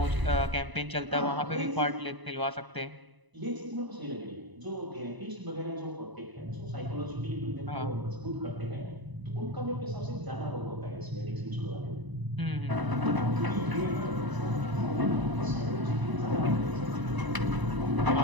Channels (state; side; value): late; left; 1.0 ms